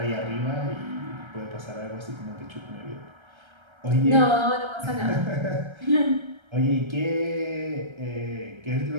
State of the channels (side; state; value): left; late; 1.3 ms